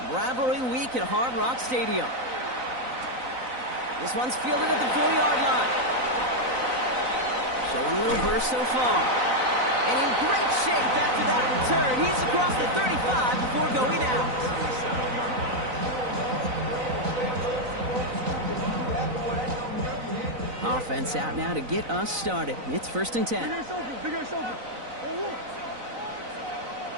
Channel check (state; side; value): late; left; 4.0 ms